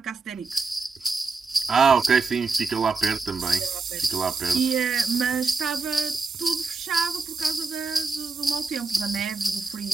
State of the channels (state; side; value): quieter; left; 4.2 dB